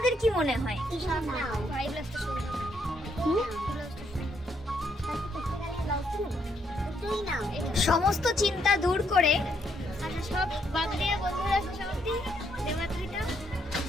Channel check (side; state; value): both; normal; correlation 0.74